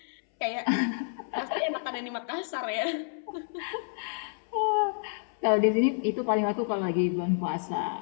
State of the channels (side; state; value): right; silent; 58 dB below the other